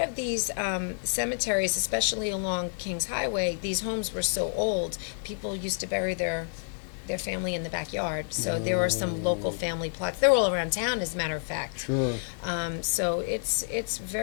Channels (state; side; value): silent; right; digital silence